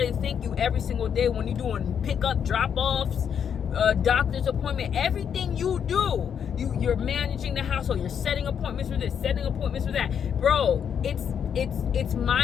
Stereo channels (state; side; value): quieter; right; 7.9 dB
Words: to thank you every single day when you're doing pickup, drop-offs, doctor's appointment, everything you do. You're managing the household. You're setting appointments for this, setting appointments for that. Bro, it's